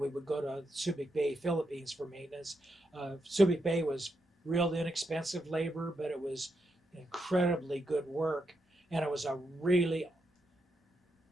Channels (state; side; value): normal; both; correlation 0.83